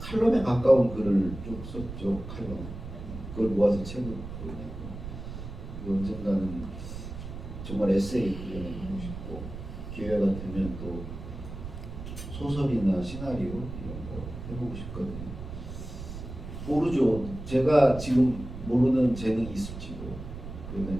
가까운 글을 쭉 썼죠. 칼럼. 그걸 모아서 책을 내고 언젠가는 정말 에세이 그려내고 싶고 기회가 되면 또 소설이나 시나리오 이런 거 해보고 싶거든요. 모르죠. 제가 지금 모르는 재능이 있을지도. 그러면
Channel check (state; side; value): noise; right; rumble, 10 dB below the sound